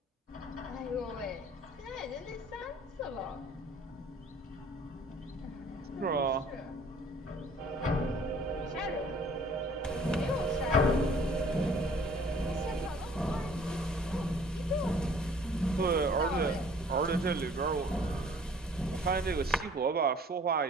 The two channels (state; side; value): normal; both; correlation 0.54